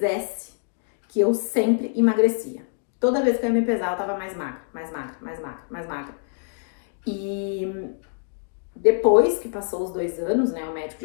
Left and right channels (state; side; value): silent; right; digital silence